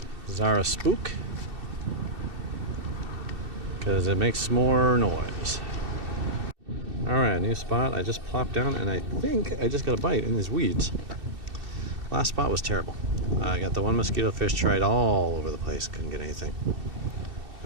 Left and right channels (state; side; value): late; left; 2.7 ms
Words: Zara Spook, because it makes more noise. Alright, new spot. I just plopped down and I think I just got a bite in these weeds. Last spot was terrible. I got the one mosquito fish, tried all over the place, couldn't get anything.